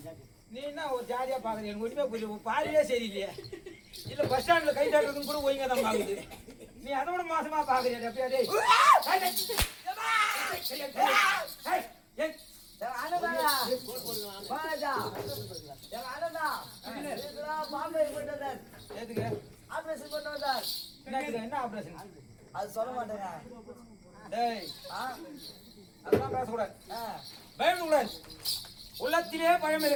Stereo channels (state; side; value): identical; both; correlation 1.00